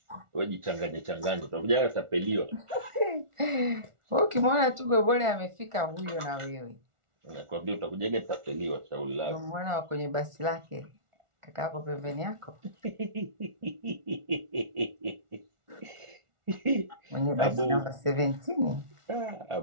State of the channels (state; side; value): late; left; 1.4 ms